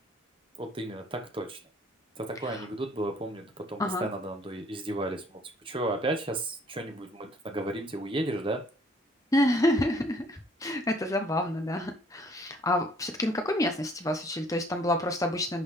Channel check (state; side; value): normal; both; correlation 0.59